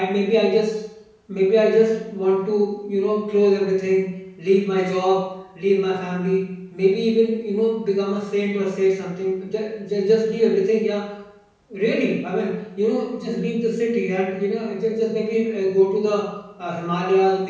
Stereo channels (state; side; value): identical; both; correlation 1.00